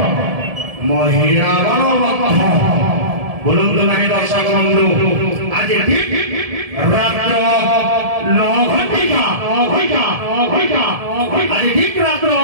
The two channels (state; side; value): late; left; 1.7 ms